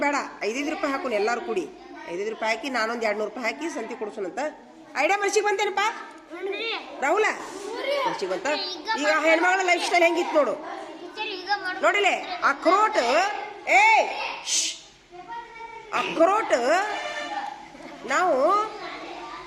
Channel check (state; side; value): identical; both; correlation 1.00